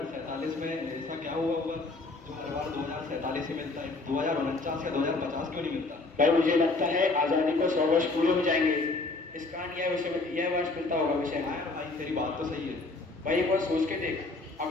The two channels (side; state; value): right; quieter; 3.4 dB